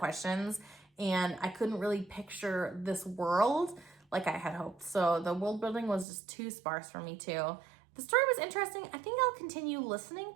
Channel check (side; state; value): left; drops out; at 6.1 s